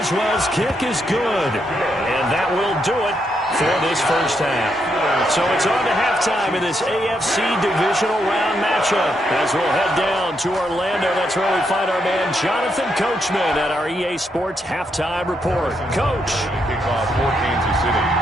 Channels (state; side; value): normal; both; correlation 0.79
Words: kick is good. And that will do it for this first half. So it's on to halftime in this AFC Divisional Round matchup. As we'll head down to Orlando, that's where we find our man Jonathan Coachman at our EA Sports Halftime Report. Coach. Kickoff for Kansas City.